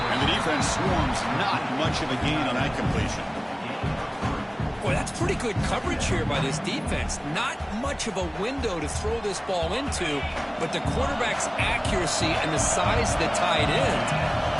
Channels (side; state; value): both; identical; correlation 1.00